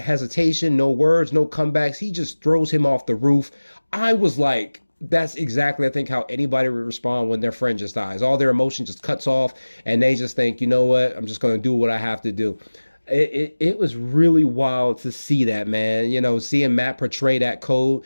hesitation, no words, no comebacks, he just throws him off the roof. I was like, that's exactly, I think, how anybody would respond when their friend just dies. All their emotion just cuts off and they just think, you know what, I'm just going to do what I have to do. It was really wild to see that, man. Seeing Matt portray that code,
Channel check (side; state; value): both; inverted; correlation -1.00